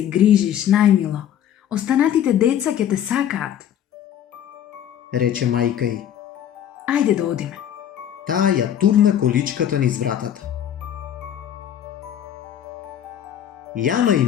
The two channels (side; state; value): right; quieter; 10.1 dB